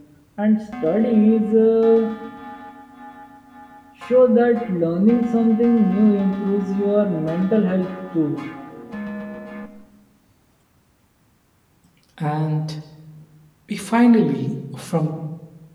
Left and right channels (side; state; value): both; identical; correlation 1.00